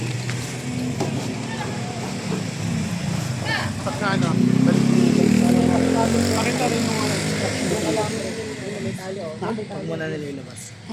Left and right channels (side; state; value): both; identical; correlation 1.00